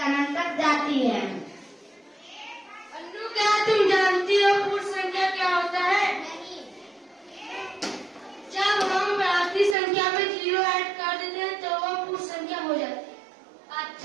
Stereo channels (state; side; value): drops out; left; at 9.8 s